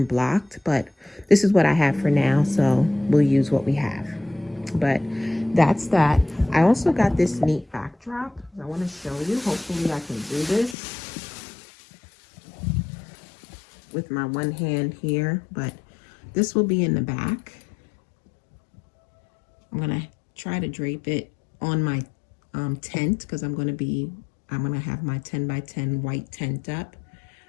blocked. But this is what I have for now, so we'll use what we have. But that's that. I also got this neat backdrop I want to show you. Hopefully I can do this with my one hand here, but this will be in the back. I'm gonna try to drape it on my tent because I'm gonna have my 10 by 10 white tent up,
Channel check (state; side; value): drops out; right; at 10.8 s